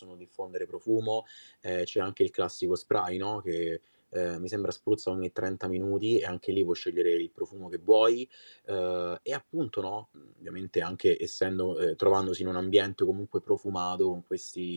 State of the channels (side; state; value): both; inverted; correlation -1.00